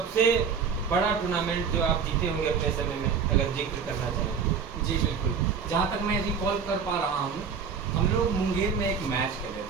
बड़ा टूर्नामेंट जो आप जीते होंगे अपने समय में, अगर जिक्र करना चाहें। जी बिल्कुल, जहाँ तक मैं रिकॉल कर पा रहा हूँ, हम लोग मुंगेर में एक मैच खेले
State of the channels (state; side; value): quieter; left; 6.2 dB